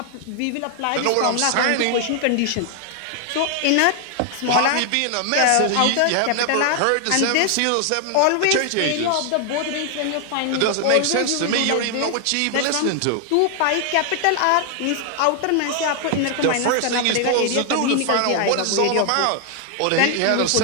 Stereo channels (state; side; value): different; both; correlation 0.00